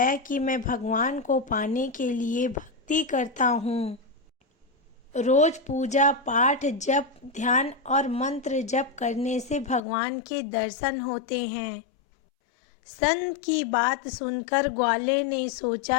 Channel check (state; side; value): drops out; right; at 9.8 s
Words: कि मैं भगवान को पाने के लिए भक्ति करता हूँ। रोज पूजा पाठ, जप, ध्यान और मंत्र जप करने से भगवान के दर्शन होते हैं। संत की बात सुनकर ग्वाले ने